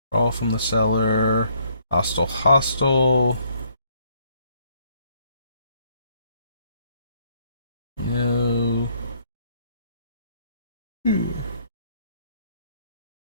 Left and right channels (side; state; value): both; inverted; correlation -0.67